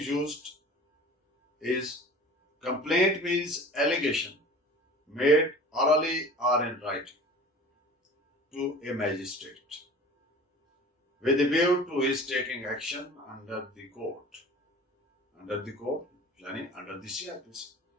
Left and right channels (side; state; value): both; normal; correlation 0.41